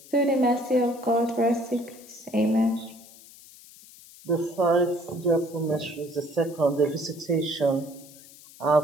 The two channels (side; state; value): left; noise; hiss, 21 dB below the sound